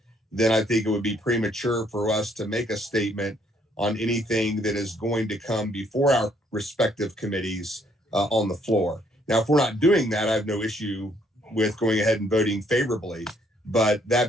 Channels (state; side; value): normal; both; correlation 0.67